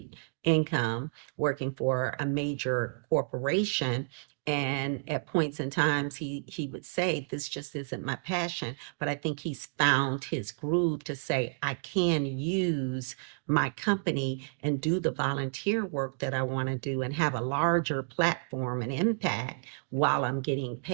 income working for a major corporation. And at points in times, he would say, this just isn't my passion. But I think he's found his groove to say, I can use my company and do the volunteer work that I want to do and have a larger platform and impact while I'm getting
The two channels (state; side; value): silent; left; digital silence